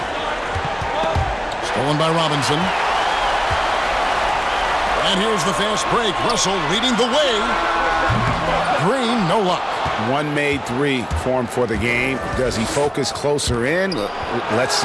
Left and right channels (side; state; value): both; identical; correlation 1.00